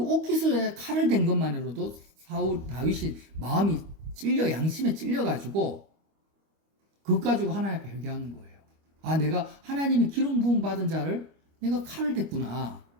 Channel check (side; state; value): left; late; 25 ms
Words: 칼을 댄 것만으로도 다윗이 마음이 찔려, 양심에 찔려가지고 그것 가지고 하나님 앞에 회개하는 거예요. 아, 내가 하나님이 기름 부음 받은 자를 내가 칼을 댔구나.